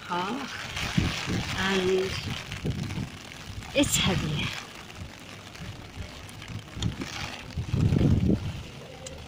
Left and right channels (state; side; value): identical; both; correlation 1.00